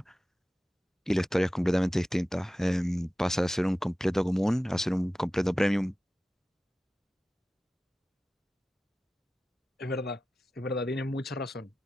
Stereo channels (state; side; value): normal; both; correlation 0.95